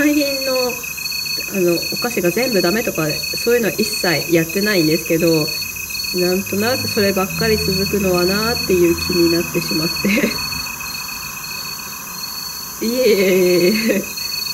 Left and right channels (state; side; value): identical; both; correlation 1.00